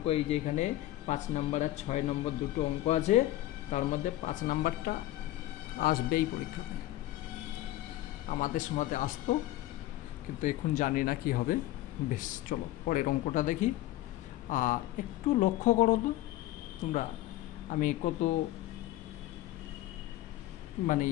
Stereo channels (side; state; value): right; quieter; 15.5 dB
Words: এই যে এখানে 5 নম্বর আর 6 নম্বর দুটো অঙ্ক আছে, তার মধ্যে 5 নম্বরটা আসবেই পরীক্ষাতে। আমাদের সময়তে আসতো, কিন্তু এখন জানি না কি হবে। বেশ, চলো পরের অঙ্কটা দেখি। একটু লক্ষ্য করো তো তোমরা, আমি